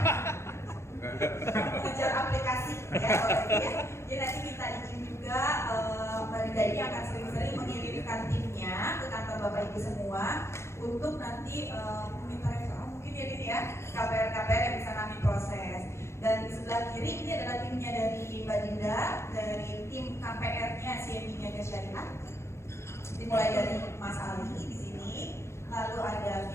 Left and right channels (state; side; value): late; right; 0.13 ms